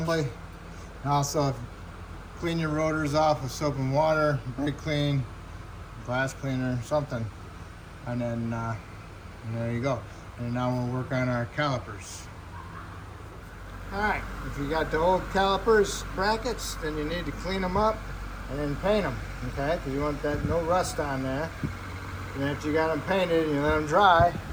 And also clean your rotors off with soap and water, brake clean, glass cleaner, something. And then there you go. And now we'll work on our calipers. All right, if you got the old calipers brackets, then you need to clean them up and then paint them, okay? Because you want that no rust on there. And after you got them painted and you let them dry,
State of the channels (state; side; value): identical; both; correlation 1.00